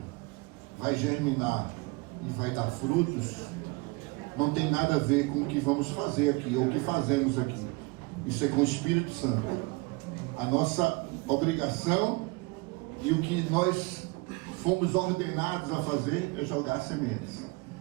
vai germinar e vai dar frutos, não tem nada a ver com o que vamos fazer aqui, ou o que fazemos aqui. Isso é com o Espírito Santo. A nossa obrigação e o que nós fomos ordenados a fazer é jogar sementes.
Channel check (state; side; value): quieter; left; 26.0 dB